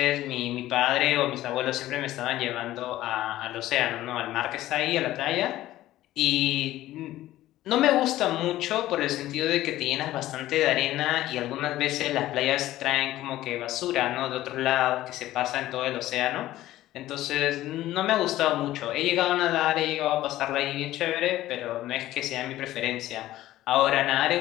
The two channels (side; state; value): right; quieter; 15.0 dB